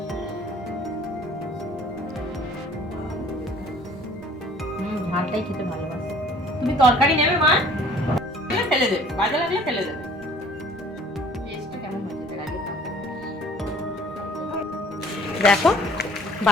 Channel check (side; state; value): both; normal; correlation 0.53